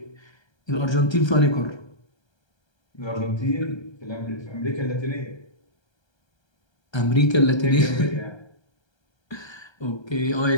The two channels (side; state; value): right; late; 1.3 ms